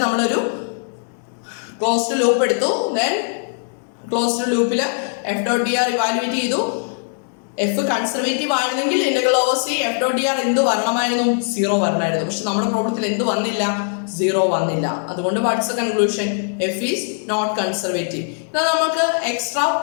നമ്മളൊരു ക്ലോസ്ഡ് ലൂപ്പ് എടുത്തു. ദെൻ ക്ലോസ്ഡ് ലൂപ്പിൽ F dot D R evaluate ചെയ്തു. എഫ് കൺസർവേറ്റീവ് ആയിരുന്നെങ്കിൽ integral over C F dot D R എന്ത് വരണമായിരുന്നു? 0 വരണമായിരുന്നു. പക്ഷെ നമ്മുടെ പ്രോബ്ലത്തിൽ എന്ത് വന്നില്ല? 0 വന്നില്ല. അതുകൊണ്ട് what's the conclusion? F is not conservative. എന്നാൽ നമുക്ക് എക്സ്ട്രാ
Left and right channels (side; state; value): right; silent; digital silence